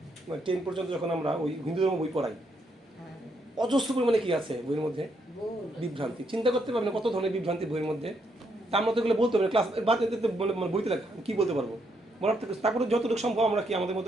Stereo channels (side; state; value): both; normal; correlation 0.76